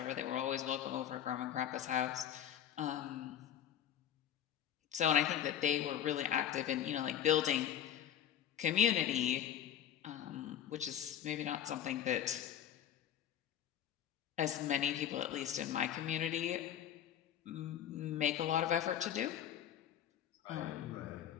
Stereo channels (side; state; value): right; quieter; 10.2 dB